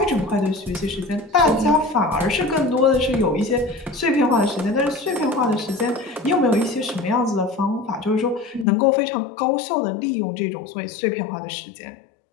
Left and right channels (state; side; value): drops out; right; at 8.7 s